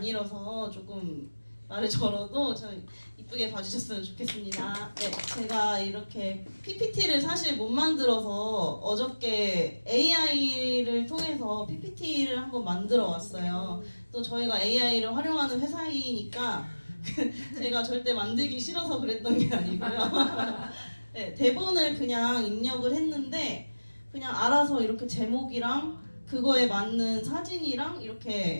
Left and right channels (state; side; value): inverted; both; correlation -1.00